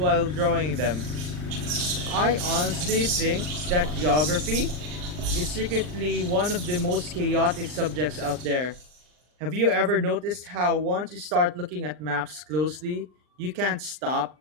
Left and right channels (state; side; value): late; left; 39 ms